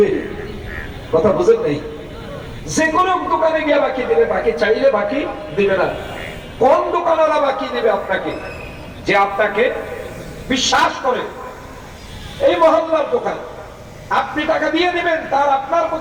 কথা বুঝেন নাই? যে কোনো দোকানে গিয়ে বাকি দেবে, বাকি চাইলে বাকি দিবে না। কোন দোকানওয়ালা বাকি দিবে আপনাকে? যে আপনাকে বিশ্বাস করে। এই মহল্লার দোকান, আপনি টাকা দিয়ে দিবেন, তার আপনার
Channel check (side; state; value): both; identical; correlation 1.00